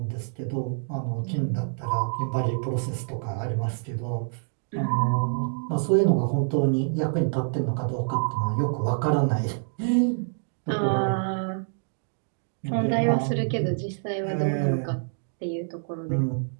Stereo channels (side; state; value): left; silent; digital silence